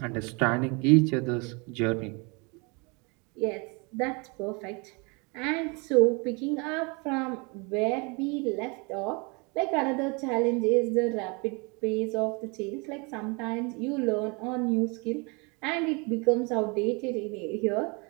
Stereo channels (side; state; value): left; quieter; 30.4 dB